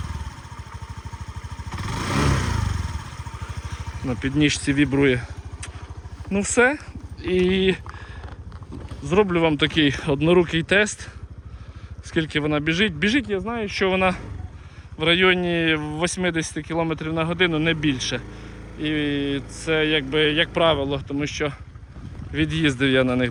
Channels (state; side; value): identical; both; correlation 1.00